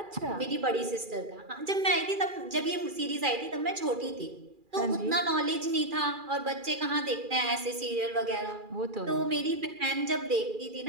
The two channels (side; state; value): left; late; 2.4 ms